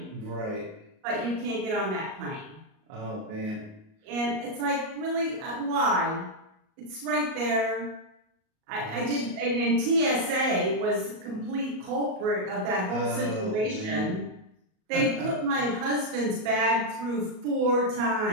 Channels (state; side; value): late; left; 38 ms